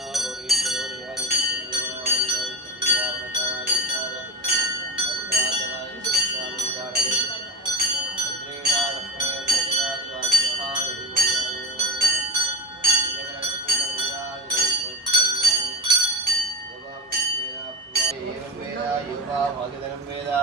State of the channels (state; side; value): normal; both; correlation 0.28